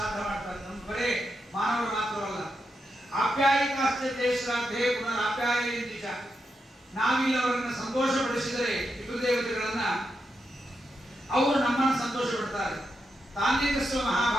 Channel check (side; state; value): both; normal; correlation 0.85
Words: ಮಾಡ್ತಾರೆ. ನಮ್ಮ ಬರೇ ಮಾನವರು ಮಾತ್ರವಲ್ಲ. ಆಪ್ಯಾಯಿತಾಶ್ಚತೆ ಶ್ರಾದ್ಧೆ ಪುನರಾಪ್ಯಾಯಂತಿಚ, ನಾವಿಲ್ಲಿ ಅವರನ್ನ ಸಂತೋಷಪಡಿಸಿದರೆ ಪಿತೃದೇವತೆಗಳನ್ನ ಅವರು ನಮ್ಮನ್ನು ಸಂತೋಷ ಪಡ್ತಾರೆ. ತಾನ್ಯತಸ್ವ